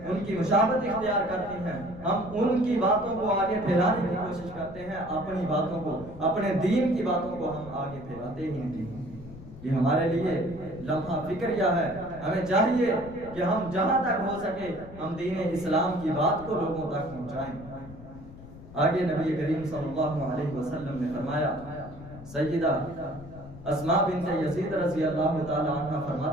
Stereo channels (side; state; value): left; noise; rumble, 16 dB below the sound